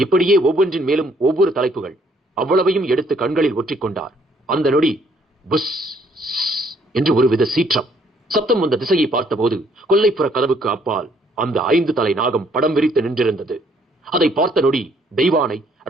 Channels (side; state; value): both; normal; correlation 0.65